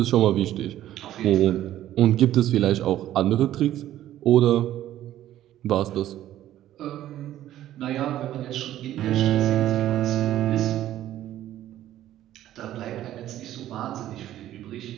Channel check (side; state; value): left; quieter; 13.0 dB